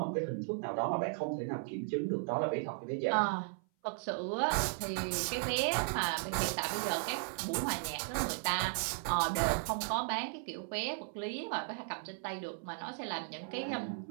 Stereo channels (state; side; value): silent; left; 54 dB below the other